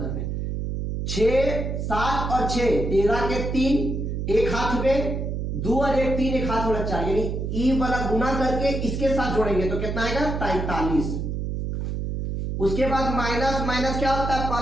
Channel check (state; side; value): noise; right; hum, 3 dB below the sound